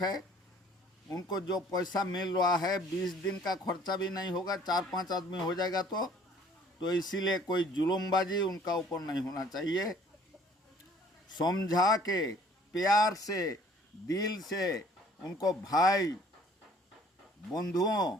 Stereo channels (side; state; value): both; normal; correlation 0.56